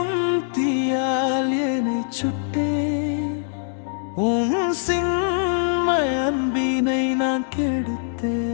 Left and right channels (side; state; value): right; silent; digital silence